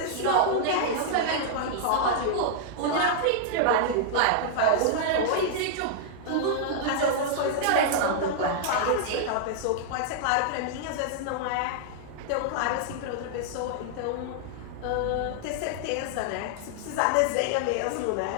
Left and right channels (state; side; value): different; both; correlation -0.01